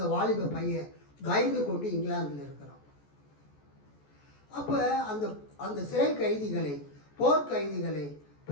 வாலிப பையன் பயந்து கொண்டு இங்கிலாந்தில் இருக்கிறான். அப்போ அந்த சிறை கைதிகளை, போர் கைதிகளை,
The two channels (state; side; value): late; right; 14 ms